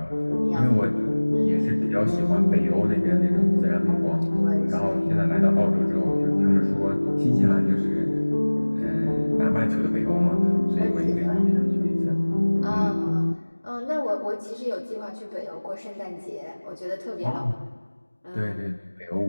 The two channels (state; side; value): inverted; both; correlation -1.00